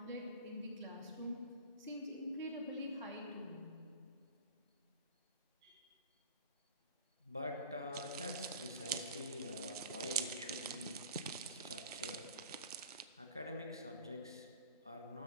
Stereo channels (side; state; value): both; inverted; correlation -0.40